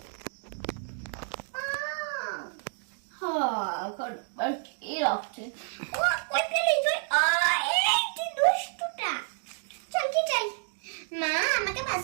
কি রাখছে? চল কি চাই? মা আমাকে 5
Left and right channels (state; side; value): silent; left; 56 dB below the other